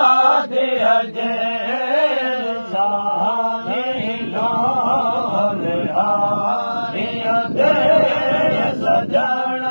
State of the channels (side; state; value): both; inverted; correlation -1.00